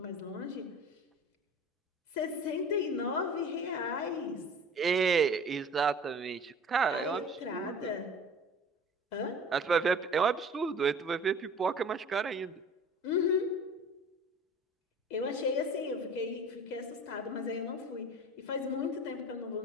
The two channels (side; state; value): both; normal; correlation 0.42